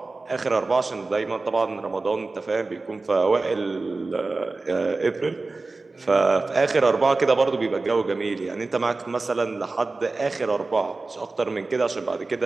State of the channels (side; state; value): left; quieter; 3.5 dB